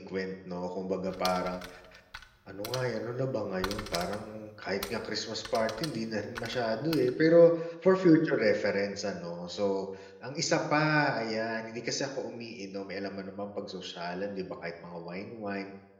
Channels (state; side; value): identical; both; correlation 1.00